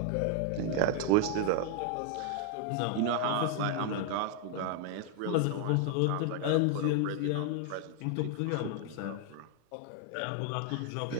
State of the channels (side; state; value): both; different; correlation 0.00